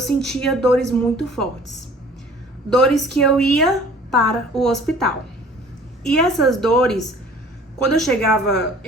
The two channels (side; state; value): both; normal; correlation 0.50